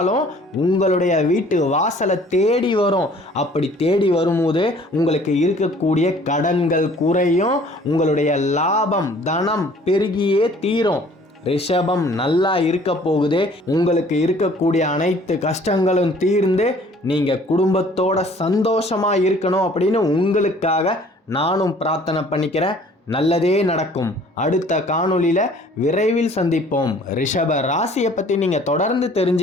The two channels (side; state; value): both; normal; correlation 0.54